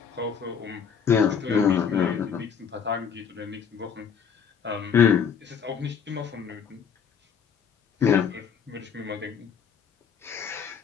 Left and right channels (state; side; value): quieter; right; 7.0 dB